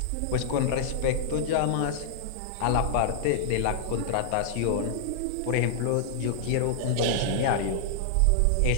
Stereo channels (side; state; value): both; different; correlation -0.01